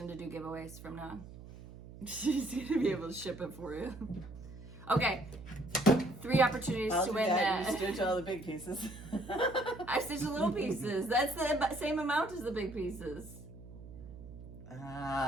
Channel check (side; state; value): right; noise; hum, 15 dB below the sound